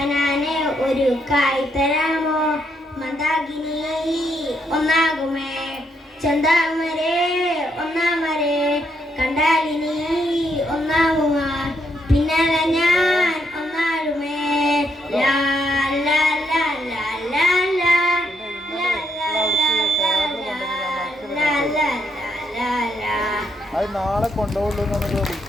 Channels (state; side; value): normal; both; correlation 0.76